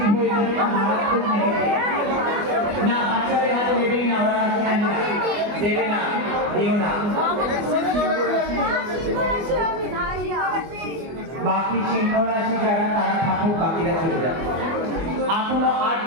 হয়ে যাবে, মারাত্মক নেগেটিভ। না, বাচ্চাদের হাতে দেবেই না, ওরা রাশি জানি না, দেবে না, দিও না। বাকি সিংহ রাশি যারা তারা ঠাকুর, বাকিরা চলে যাবে। এখনো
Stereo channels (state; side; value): late; left; 24 ms